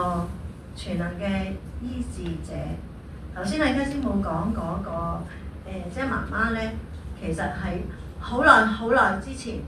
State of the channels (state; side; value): identical; both; correlation 1.00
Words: 全能嘅醫治者。頭先阿 K 師母講嗰個即係媽媽咧，其實係好耐之前